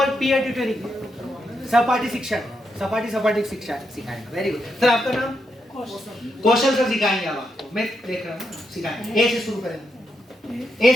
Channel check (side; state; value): both; normal; correlation 0.82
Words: peer tutoring, सहपाठी शिक्षण, सपाटी शिक्षा सिखाएंगे, वेरी गुड सर। आपका नाम? कौशल सर सिखाएंगे आप आपको, मैं देख रहा हूँ, सिखाएंगे। ए से शुरू करें, ए